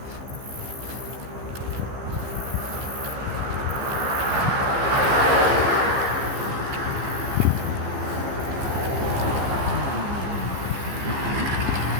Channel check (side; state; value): left; late; 15 ms